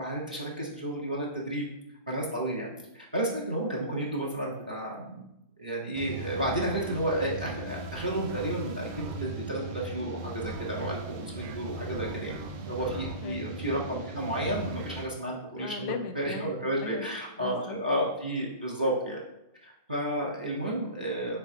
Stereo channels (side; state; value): both; inverted; correlation -0.36